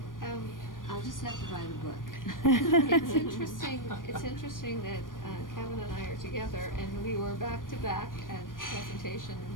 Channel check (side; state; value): right; late; 0.90 ms